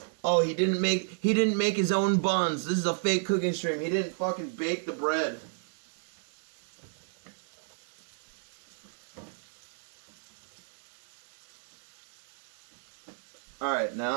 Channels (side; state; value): left; silent; digital silence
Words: Oh, he didn't make his own buns. This is a fake cooking stream. He didn't fucking bake the bread. Alright,